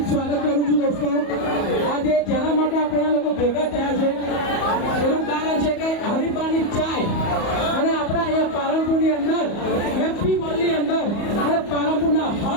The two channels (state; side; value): late; right; 34 ms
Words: સ્વાગત કરું છું દોસ્તો। આજે જેના માટે આપણે આ લોકો ભેગા થયા છે એનું કારણ છે કે હરિપાની ચાય અને આપણા અહીંયા પાલનપુરની અંદર હેપી મોલની અંદર અને પાલનપુરના